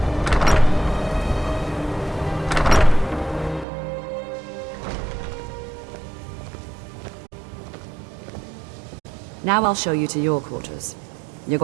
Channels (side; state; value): left; drops out; at 3.7 s